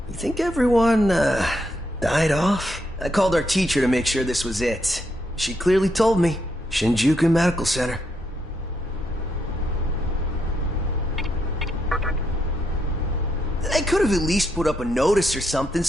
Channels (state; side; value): normal; both; correlation 0.78